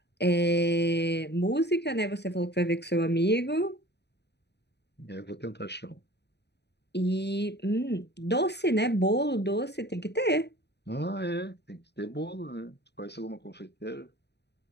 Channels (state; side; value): late; right; 0.49 ms